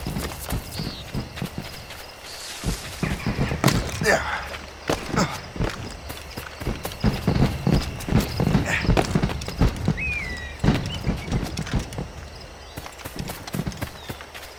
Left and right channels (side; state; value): both; identical; correlation 1.00